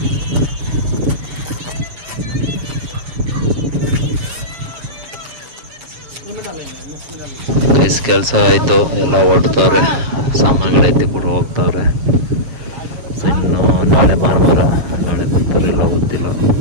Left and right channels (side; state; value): left; late; 7.4 ms